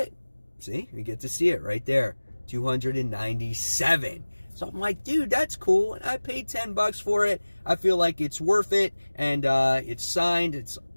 See, you get to see it right there, 297. So I'm like, dude, that's cool, and I paid $10 for it. I feel like it's worth it, and it's signed. It's,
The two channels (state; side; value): inverted; both; correlation -1.00